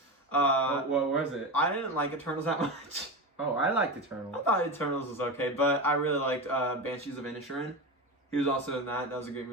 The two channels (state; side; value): normal; both; correlation 0.21